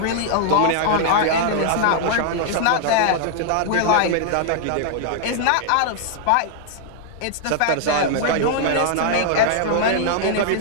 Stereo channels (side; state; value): both; different; correlation -0.01